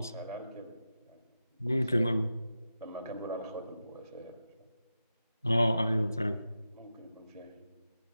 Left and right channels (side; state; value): both; inverted; correlation -0.91